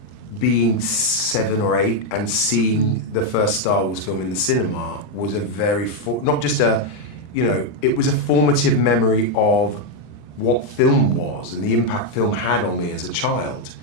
being 7 or 8 and seeing the first Star Wars film in the cinema was a very, not just a, it was a formative memory of what film was and the impact film had on me as a child,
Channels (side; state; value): right; late; 39 ms